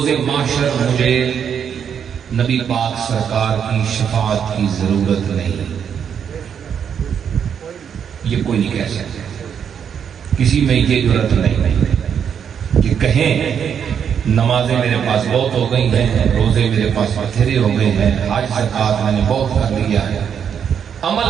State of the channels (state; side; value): quieter; left; 7.9 dB